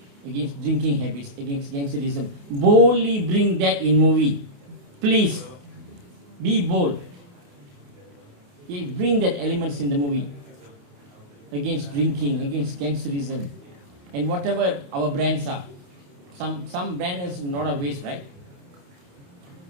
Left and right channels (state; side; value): late; left; 28 ms